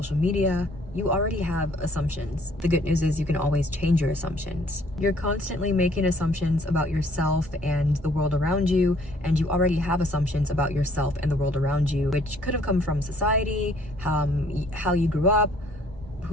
media. You already have assumptions. The good news is you can always change your assumptions. You're constantly making assumptions about yourself and the world around you, and you already have assumptions about yourself and the world around you, which could have come from society, how you grew up,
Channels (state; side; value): normal; both; correlation 0.61